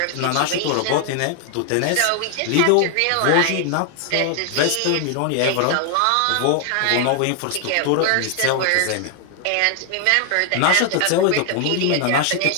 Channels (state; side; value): different; both; correlation 0.00